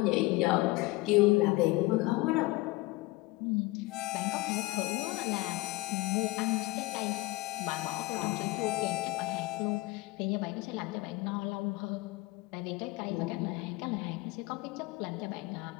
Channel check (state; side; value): quieter; right; 21.1 dB